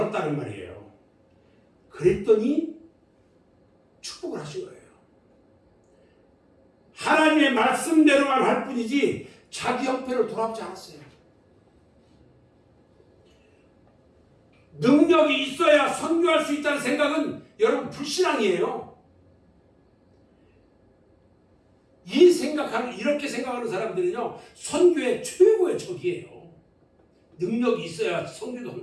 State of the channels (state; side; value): identical; both; correlation 1.00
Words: 말이에요. 그랬더니 축복을 하신 거예요. 하나님의 말씀대로만 할 뿐이지 자기 형편을 돌아보지 않았어요. 능력이 있어야 선교할 수 있다는 생각은 여러분 불신앙이에요. 이렇게 생각하는 사람들은요, 선교의 최고의 적이에요. 능력이 있어야 선교도